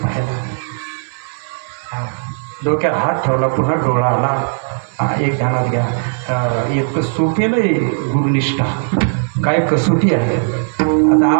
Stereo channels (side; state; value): left; silent; digital silence